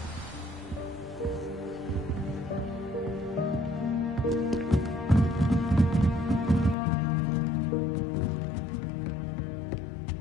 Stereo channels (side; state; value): right; drops out; at 6.8 s